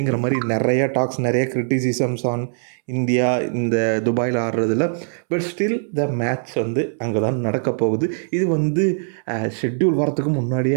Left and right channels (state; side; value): silent; left; 65 dB below the other